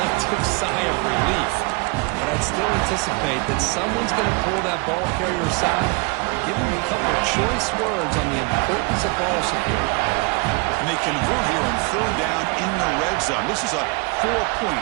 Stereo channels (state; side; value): quieter; left; 29.6 dB